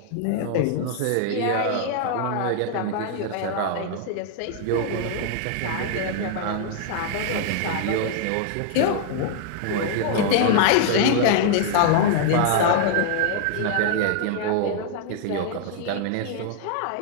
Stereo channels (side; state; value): both; different; correlation 0.00